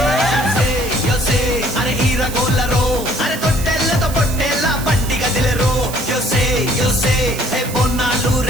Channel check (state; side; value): noise; right; hiss, 11 dB below the sound